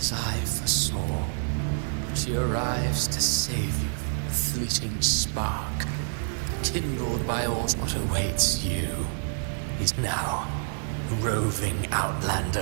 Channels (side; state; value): left; silent; digital silence